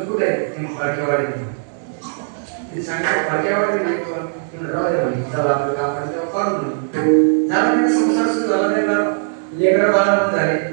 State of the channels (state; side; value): silent; left; digital silence